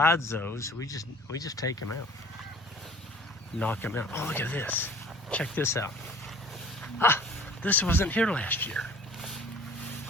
those, we just take them out. Knock them out. Oh, look at this. Check this out. Ah, this wasn't here last year.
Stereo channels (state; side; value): normal; both; correlation 0.48